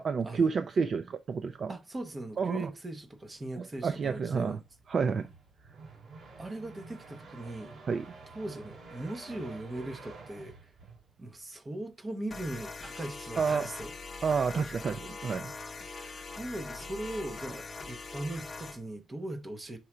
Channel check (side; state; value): left; quieter; 3.8 dB